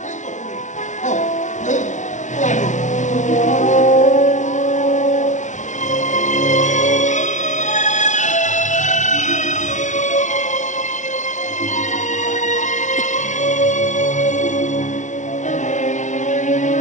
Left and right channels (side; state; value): right; late; 0.35 ms